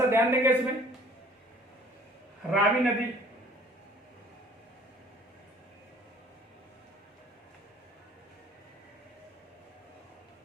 ध्यान देंगे इसमें। रावी नदी,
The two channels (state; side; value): normal; both; correlation 0.53